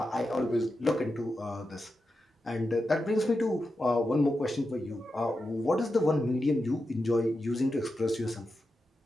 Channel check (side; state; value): both; normal; correlation 0.89